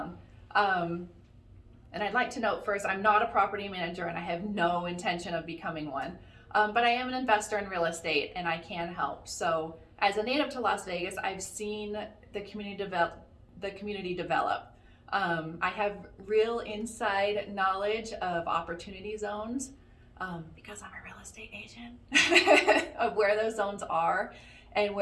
And I'd like to note first, I'm not a property manager and I have no intention of becoming one, but I am an investor in real estate and I can help. So as a native to Las Vegas, I've seen the community develop. I have real inside knowledge of opportunity zones, because I'm a real estate agent, of where those zones are and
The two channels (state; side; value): identical; both; correlation 1.00